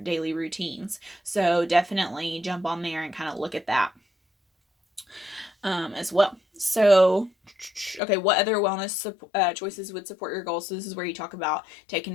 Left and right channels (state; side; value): drops out; right; at 8.0 s